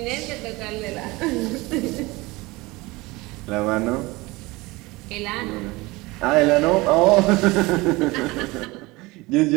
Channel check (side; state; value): left; quieter; 22.2 dB